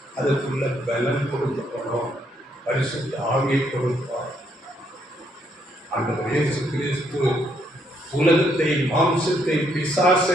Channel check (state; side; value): normal; both; correlation 0.73